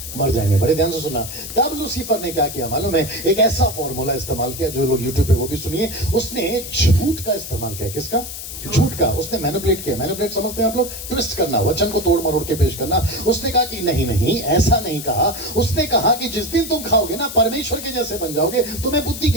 मर जाएंगे। बड़े ध्यान से सुना। तब लूसीफर ने क्या किया मालूम है? एक ऐसा फॉर्मूला इस्तेमाल किया, जो लोग यूट्यूब पे वो भी सुनिए। उसने झूठ का इस्तेमाल किया। किसका? झूठ का। उसने मैनिपुलेट किया। मैनिपुलेट समझते हैं आप लोग? ट्विस्ट करना, वचन को तोड़ मरोड़ के पेश करना। उसने कहा कि नहीं नहीं ऐसा नहीं कहा। उसने कहा कि जिस दिन तुम खाओगे ना परमेश्वर के जैसे बन जाओगे, तुम्हें बुद्धि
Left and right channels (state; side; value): noise; left; hiss, 9 dB below the sound